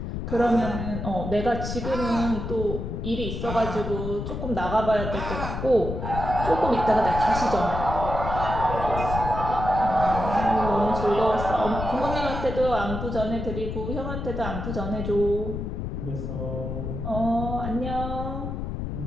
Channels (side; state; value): left; noise; rumble, 5 dB below the sound